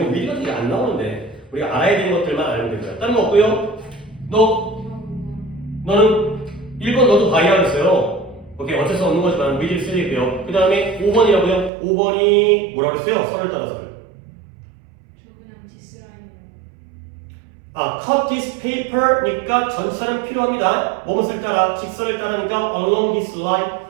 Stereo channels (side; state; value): left; drops out; at 11.7 s